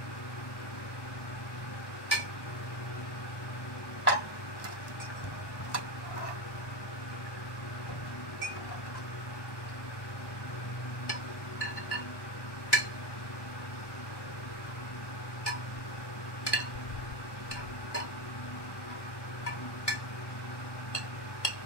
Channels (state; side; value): late; right; 1.1 ms